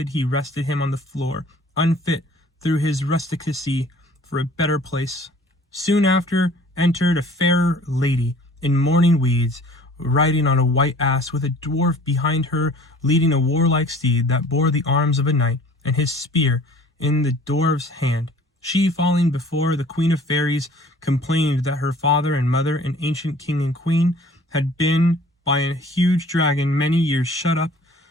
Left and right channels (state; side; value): normal; both; correlation 0.50